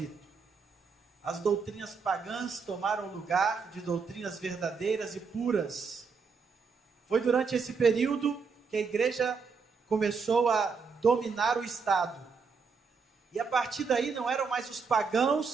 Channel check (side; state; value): left; quieter; 5.2 dB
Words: As doutrinas pagãs tomaram o lugar de doutrinas verdadeiras e puras. Foi durante esse período que a igreja começou a dominar o Estado. E a partir daí não eram mais os